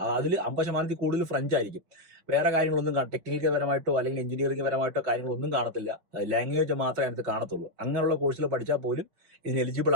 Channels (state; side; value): late; left; 6.1 ms